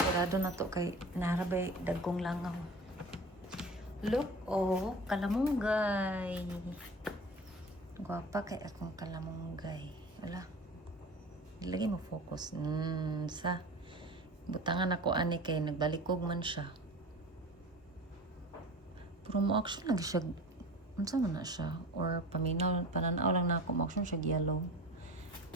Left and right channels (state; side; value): normal; both; correlation 0.36